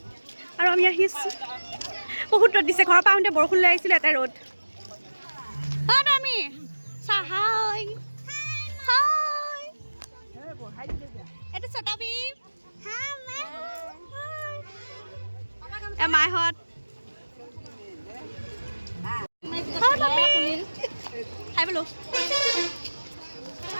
আৰু আমি আহি আছোঁ। বহুত ৰ'দ দিছে, ঘৰৰ পৰা আহোঁতে বৰষুণ লৈ আহিছিলোঁ, এটা ৰ'দ। আমি চাহাই এইটো চটাবি মাইহঁত খাই বোলো।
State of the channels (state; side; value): inverted; both; correlation -1.00